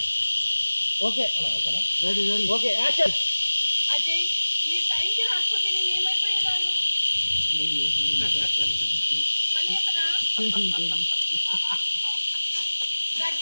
ఓకే ఓకేనా రెడీ ఓకే యాక్షన్. అజయ్ మీరు టైంకి రాకపోతే నేను ఏమైపోయేదాన్ని మళ్ళీ చెప్పనా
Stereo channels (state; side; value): inverted; both; correlation -1.00